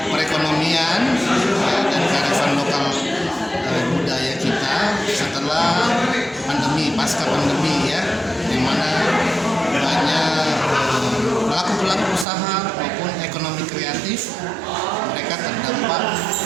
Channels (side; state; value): left; drops out; at 12.2 s